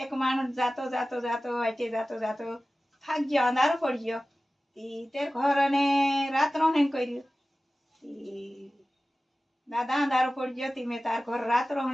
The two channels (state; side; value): normal; both; correlation 0.96